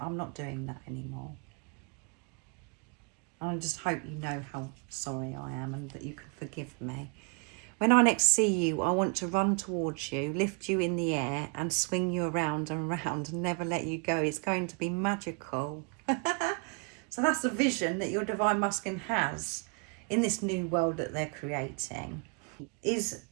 not doing that anymore. I just hope you know how sorry I am and that you can forgive me. When I next see you, I want to run towards you, lift you in the air and swing you around and round and never let you go. It's going to be magical. So that's the vision that your Divine Masculine has in this new world that they're creating. Is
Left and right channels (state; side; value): quieter; left; 33.7 dB